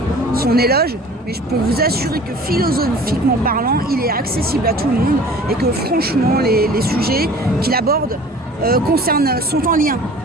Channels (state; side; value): normal; both; correlation 0.45